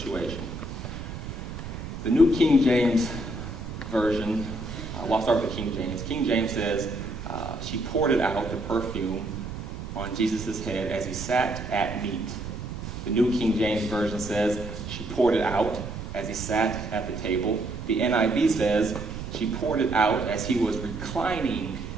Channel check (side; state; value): right; noise; rumble, 8 dB below the sound